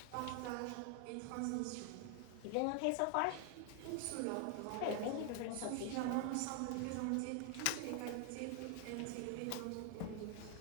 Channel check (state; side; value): different; both; correlation 0.00